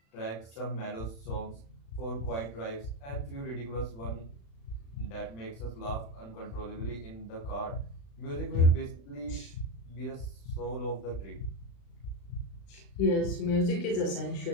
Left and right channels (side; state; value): right; late; 36 ms